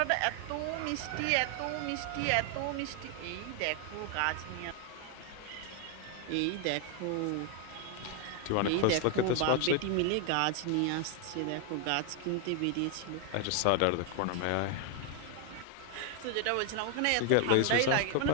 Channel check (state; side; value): different; both; correlation 0.00